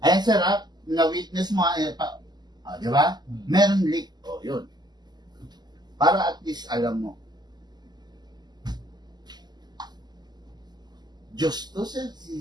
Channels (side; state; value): left; late; 0.20 ms